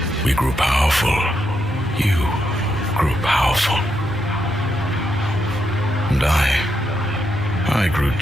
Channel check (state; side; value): normal; both; correlation 0.81